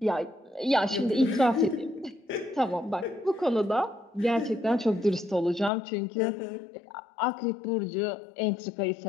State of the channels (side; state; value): right; drops out; at 5.7 s